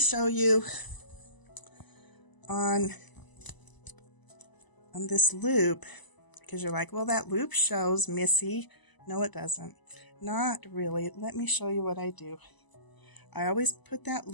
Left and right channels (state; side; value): late; right; 1.0 ms